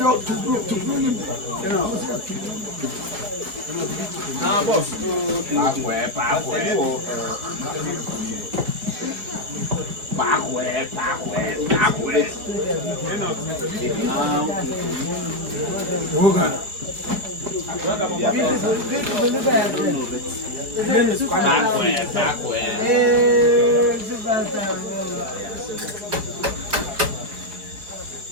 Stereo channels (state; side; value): late; left; 4.8 ms